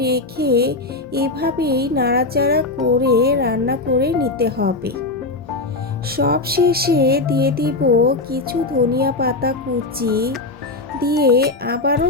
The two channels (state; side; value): quieter; right; 3.2 dB